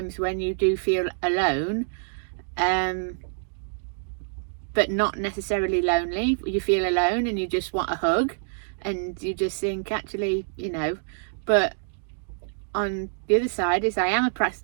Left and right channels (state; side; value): silent; left; digital silence